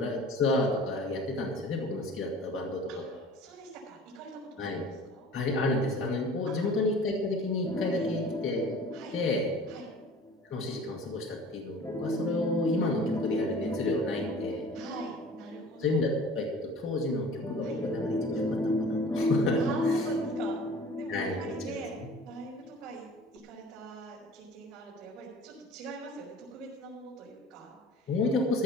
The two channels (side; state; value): both; normal; correlation 0.44